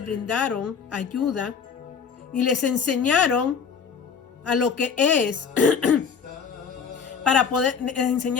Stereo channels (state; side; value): quieter; right; 6.4 dB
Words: brindaron ayuda y les enseñaron a lo que es, les